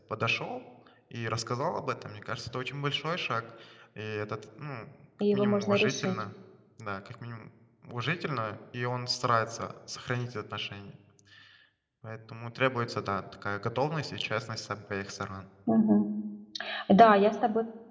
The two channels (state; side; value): identical; both; correlation 1.00